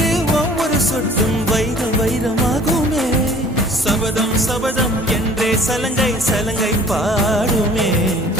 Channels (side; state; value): both; normal; correlation 0.50